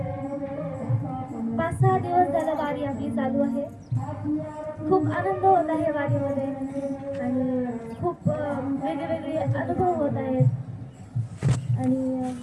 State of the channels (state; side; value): identical; both; correlation 1.00